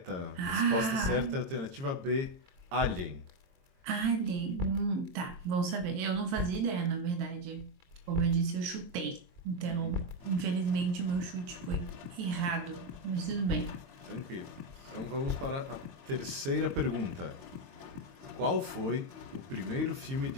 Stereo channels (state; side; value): late; left; 22 ms